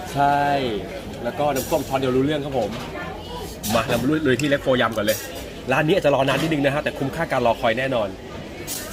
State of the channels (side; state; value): both; identical; correlation 1.00